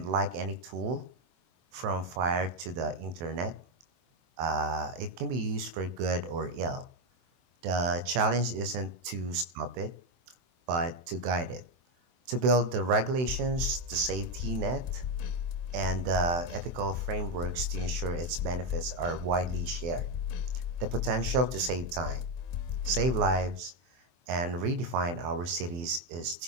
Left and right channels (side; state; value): left; late; 24 ms